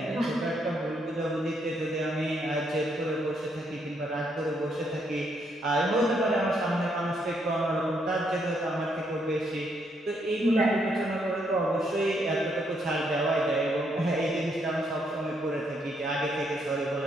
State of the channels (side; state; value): both; normal; correlation 0.74